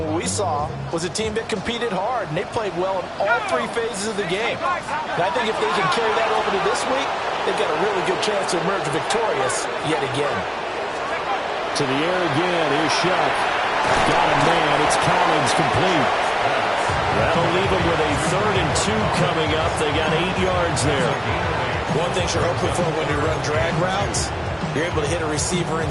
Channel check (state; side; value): identical; both; correlation 1.00